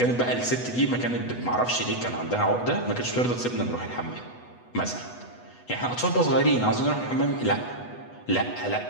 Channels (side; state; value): right; late; 8.1 ms